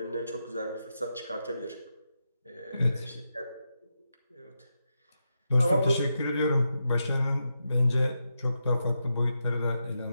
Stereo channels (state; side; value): inverted; both; correlation -0.86